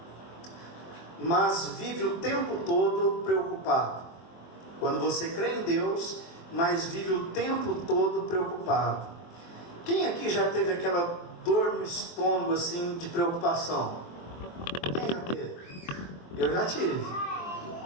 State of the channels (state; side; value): late; right; 23 ms